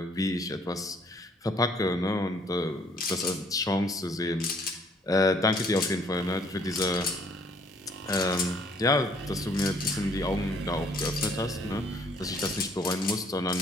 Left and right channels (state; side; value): normal; both; correlation 0.62